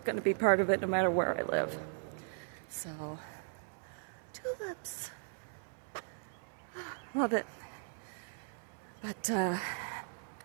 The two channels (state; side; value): silent; left; 53 dB below the other